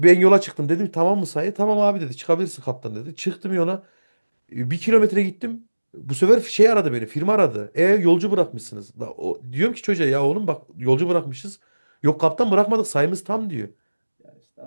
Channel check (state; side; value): inverted; both; correlation -1.00